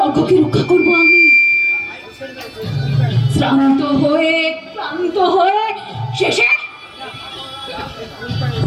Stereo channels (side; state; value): both; identical; correlation 1.00